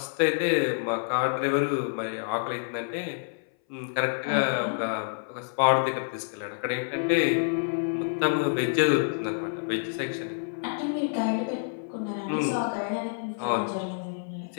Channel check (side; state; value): right; silent; 59 dB below the other